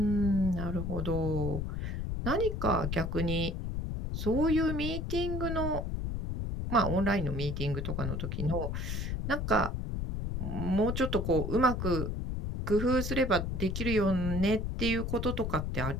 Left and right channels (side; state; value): left; noise; rumble, 2 dB below the sound